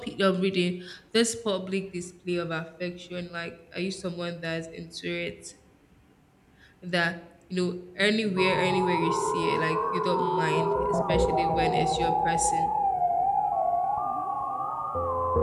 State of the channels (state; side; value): identical; both; correlation 1.00